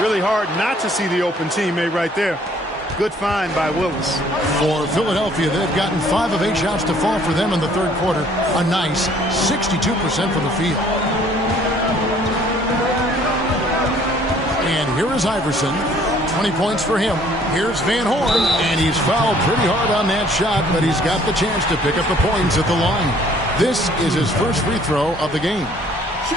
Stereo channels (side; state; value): both; normal; correlation 0.59